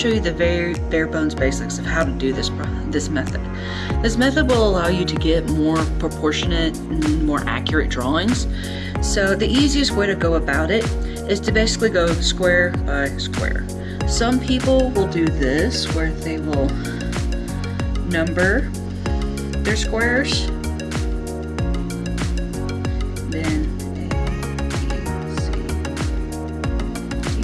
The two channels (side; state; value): both; identical; correlation 1.00